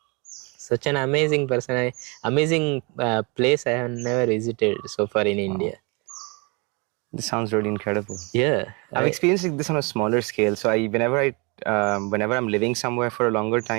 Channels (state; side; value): quieter; left; 30.4 dB